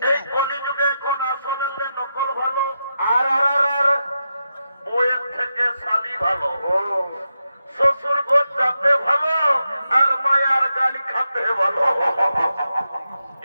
এই কলিযুগে এখন আসলে নকল ভালো, আর বইয়ের থেকে শালি ভালো, ও শ্বশুর ঘর যাতে ভালো, আর মায়ার গালি খাতে ভালো।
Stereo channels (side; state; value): both; inverted; correlation -0.87